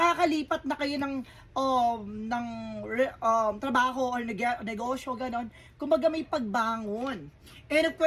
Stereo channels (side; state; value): both; identical; correlation 1.00